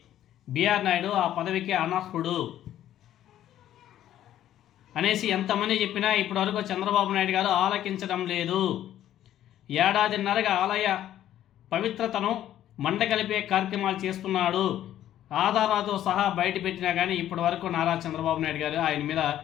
బిఆర్ నాయుడు ఆ పదవికి అనర్హుడు అనేసి ఎంతమంది చెప్పినా ఇప్పటివరకు చంద్రబాబు నాయుడు గారు ఆలకించడం లేదు. ఏడాదిన్నరగా ఆలయ పవిత్రతను మంటగలిపే కార్యక్రమాలు చేస్తున్నాడు. ఆధారాలతో సహా బయట పెట్టినా కానీ ఇప్పటి వరకు నారా చంద్రబాబు నాయుడు గారు ఆయన మీద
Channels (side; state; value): right; quieter; 12.0 dB